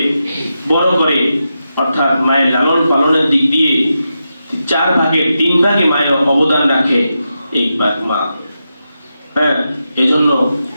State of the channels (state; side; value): inverted; both; correlation -0.88